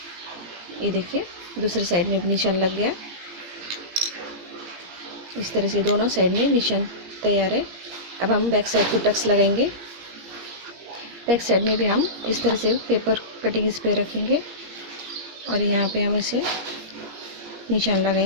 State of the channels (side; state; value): left; late; 17 ms